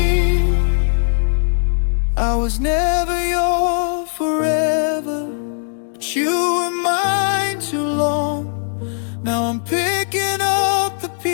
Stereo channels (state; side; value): silent; right; digital silence